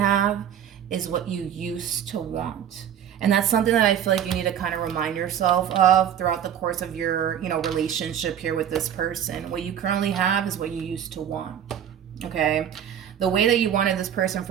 is what you used to want. And that's something that I feel like you need to kind of remind yourself of throughout the course of your, you know, relationship here with this person. What you currently have is what you used to want, okay? The way that you wanted this person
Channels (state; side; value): quieter; left; 9.5 dB